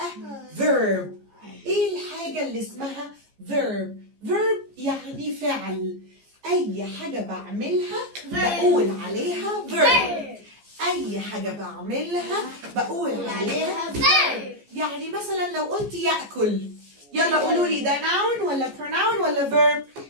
verb؟ إيه الحاجة اللي اسمها verb؟ verb يعني فعل. أي حاجة بعملها بقول عليها verb. أي حاجة بعملها بقول عليها verb. يعني مثلا لو قلت يأكل، يلا قولوا لي ده noun ولا pronoun ولا verb؟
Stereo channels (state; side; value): late; left; 14 ms